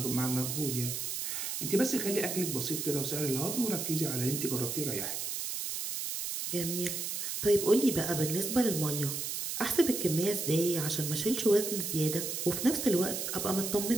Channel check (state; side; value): noise; right; hiss, 3 dB below the sound